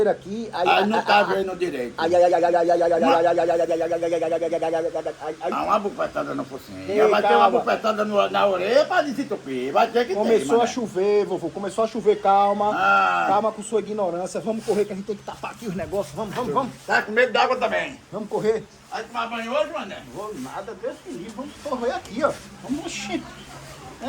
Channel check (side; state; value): both; identical; correlation 1.00